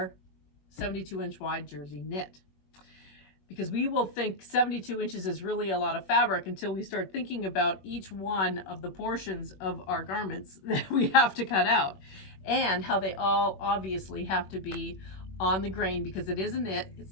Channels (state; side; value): late; right; 21 ms